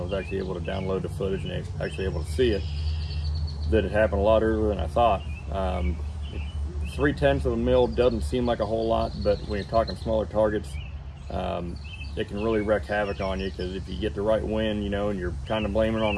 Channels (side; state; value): both; identical; correlation 1.00